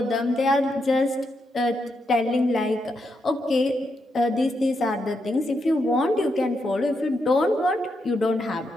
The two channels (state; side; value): normal; both; correlation 0.82